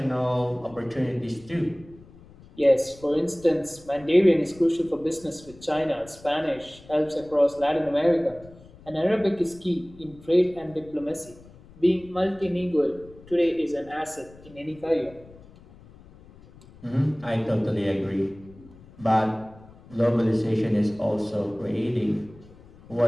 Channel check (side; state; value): left; noise; rumble, 22 dB below the sound